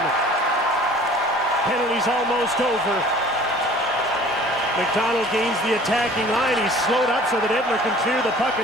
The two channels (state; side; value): normal; both; correlation 0.48